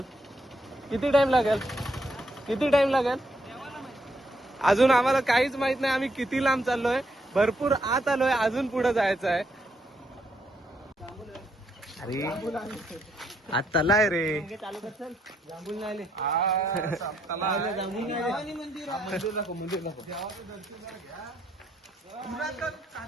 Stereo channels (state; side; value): normal; both; correlation 0.75